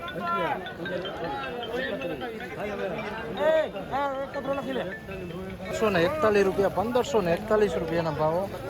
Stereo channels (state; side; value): identical; both; correlation 1.00